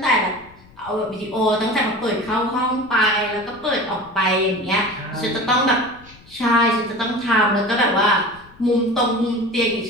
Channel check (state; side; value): noise; left; rumble, 25 dB below the sound